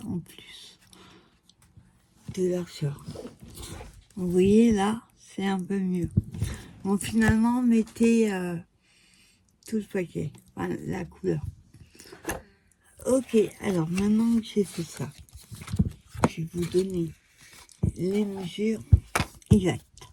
en plus de largeur. Vous voyez là, c'est un peu mieux. Bon, finalement, mettez tout le paquet, enfin, la couleur. Ok, alors maintenant que j'ai fait ça, je vais vous donner les mesures exactes.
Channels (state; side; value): identical; both; correlation 1.00